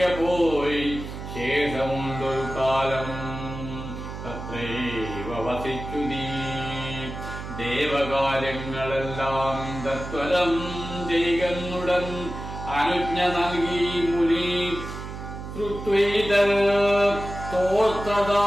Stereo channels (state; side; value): noise; right; hum, 9 dB below the sound